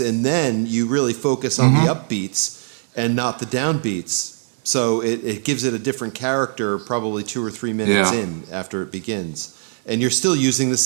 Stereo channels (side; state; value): left; silent; digital silence